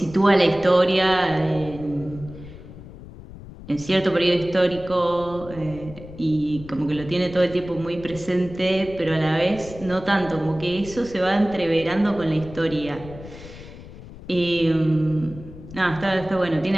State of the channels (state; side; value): noise; left; rumble, 16 dB below the sound